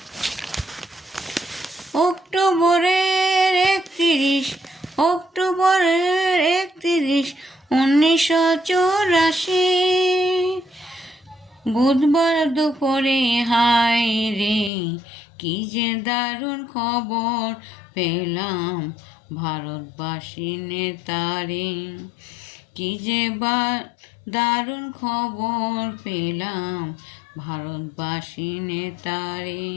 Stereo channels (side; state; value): right; drops out; at 14.7 s